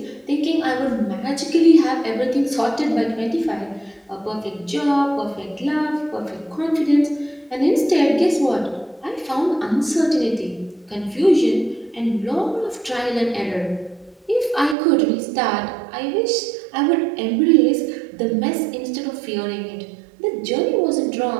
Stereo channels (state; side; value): drops out; left; at 14.8 s